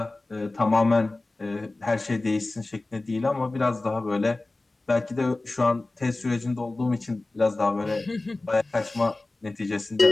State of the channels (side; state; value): right; quieter; 3.0 dB